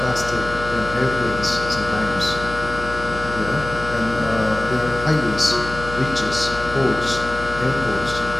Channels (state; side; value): noise; left; hum, 10 dB below the sound